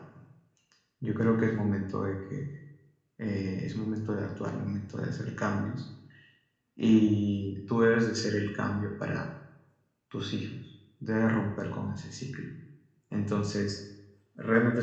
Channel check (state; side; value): identical; both; correlation 1.00